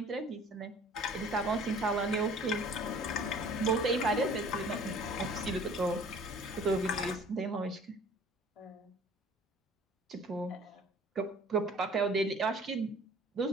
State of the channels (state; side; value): normal; both; correlation 0.50